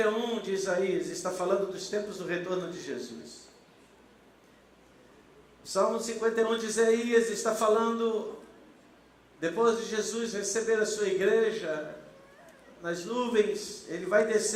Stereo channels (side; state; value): both; identical; correlation 1.00